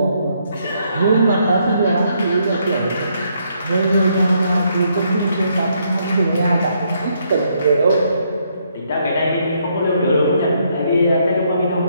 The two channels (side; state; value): both; inverted; correlation -0.73